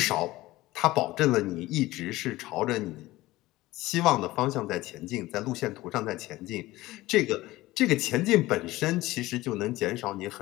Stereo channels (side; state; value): right; quieter; 18.2 dB